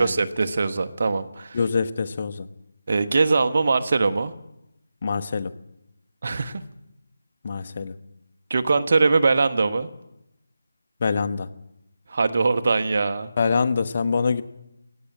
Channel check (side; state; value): both; inverted; correlation -0.90